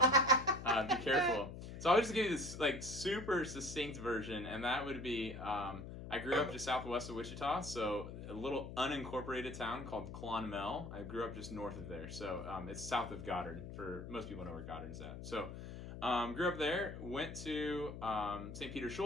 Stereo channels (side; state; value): left; noise; hum, 9 dB below the sound